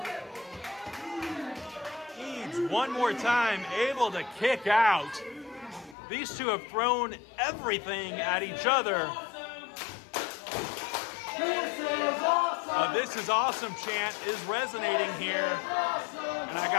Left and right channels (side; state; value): right; drops out; at 6.0 s